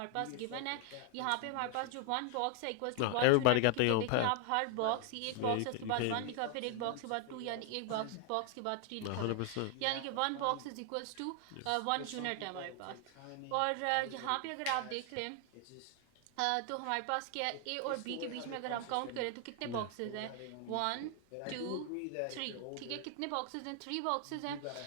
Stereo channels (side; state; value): both; different; correlation 0.00